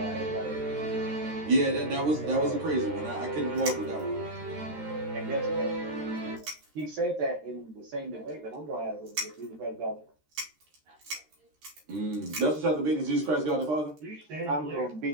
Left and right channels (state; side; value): late; left; 13 ms